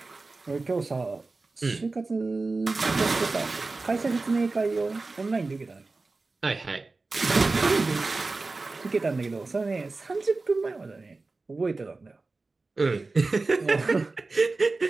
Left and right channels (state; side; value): quieter; left; 3.6 dB